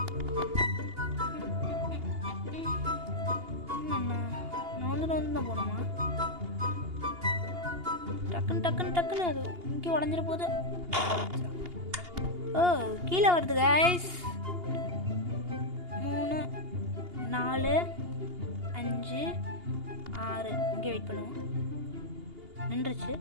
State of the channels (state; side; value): late; left; 2.8 ms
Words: நான் தான் போகணுமா? டக்குன்னு அது இங்கே உடஞ்சிட போகுது. ஓ கீழே வருது கைஸ். 3 4 5 6 இங்கே வெயிட் பண்ணுவோம். நின்றுச்சு.